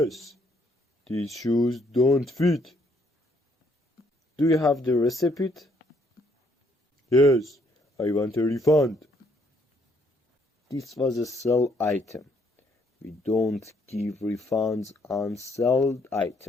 these shoes don't fit. Do you have the receipt? Yes, I want a refund. This was a sell item. We don't give refunds on sold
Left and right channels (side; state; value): both; normal; correlation 0.69